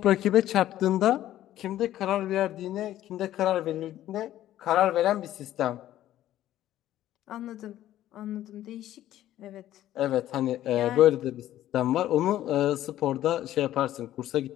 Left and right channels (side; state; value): right; quieter; 13.2 dB